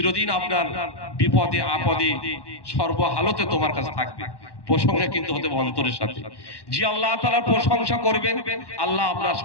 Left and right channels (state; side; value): late; right; 1.1 ms